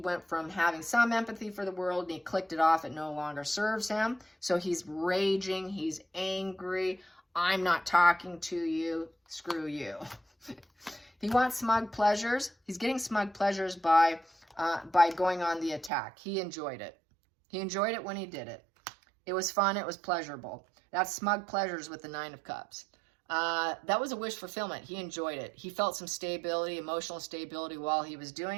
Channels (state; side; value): drops out; left; at 15.9 s